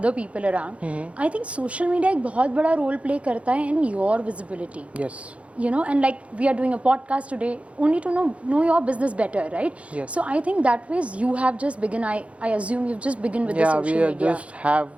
people around, I think social media एक बहुत बड़ा रोल प्ले करता है in your visibility. Yes. And like we are doing a podcast today only to know your business better, right? Yes. So I think that ways you have just begun. I assume you've just begun with the social Yeah, media. we just have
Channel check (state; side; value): late; left; 0.063 ms